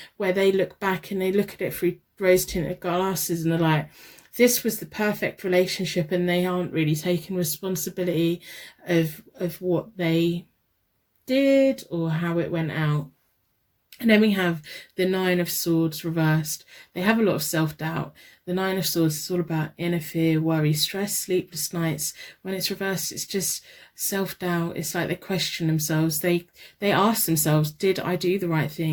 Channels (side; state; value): both; identical; correlation 1.00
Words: where they look back and they look at it through rose-tinted glasses and they're like, this was the perfect relationship, and they aren't really taking responsibility of what they did or how it went out. And then we have the Nine of Swords reversed. They have a lot of self-doubt. The Nine of Swords is all about inner fear, worry, stress, sleepless nights. When it's reversed, it's just self-doubt. It's like they question themselves. They ask themselves, did I do the right